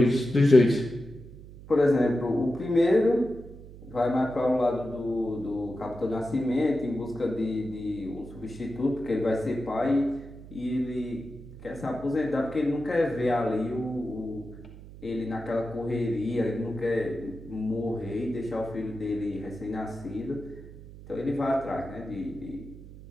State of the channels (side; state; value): right; noise; hum, 16 dB below the sound